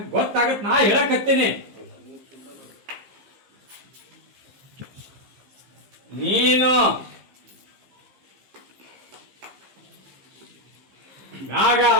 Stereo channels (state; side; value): late; left; 15 ms